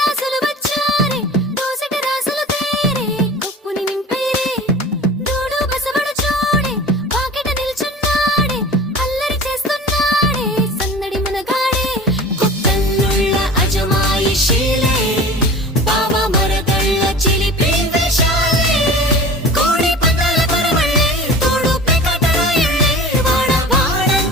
వచ్చారే దోసటి రాసులు తేరే కొప్పుని నింపేరే దూడు బసవడు చూడే పాకెట నిల్చున్నాడే అల్లరి చేస్తున్నాడే సందడి మనగాడే కొత్తన్నుళ్ళ అజమాయిషీలే బావ మరదళ్ళ చిలిపి వేషాలే కోడి పందాల పరమళ్ళే తోడు పెకటరాయళ్ళే వాడ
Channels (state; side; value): normal; both; correlation 0.38